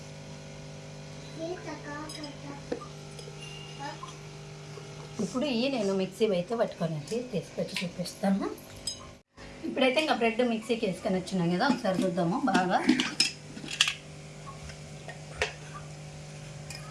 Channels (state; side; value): identical; both; correlation 1.00